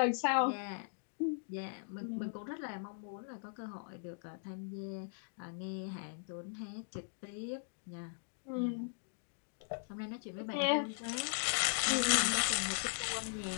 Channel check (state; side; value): silent; right; digital silence